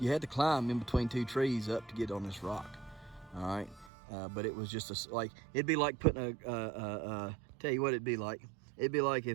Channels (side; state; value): left; drops out; at 3.9 s